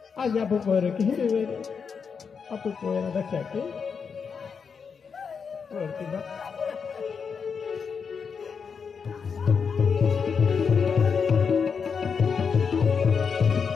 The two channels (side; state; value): right; quieter; 6.0 dB